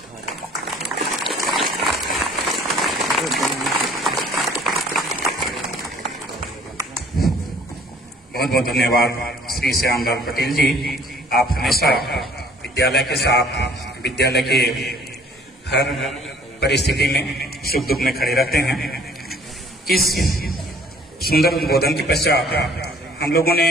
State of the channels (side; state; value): both; normal; correlation 0.55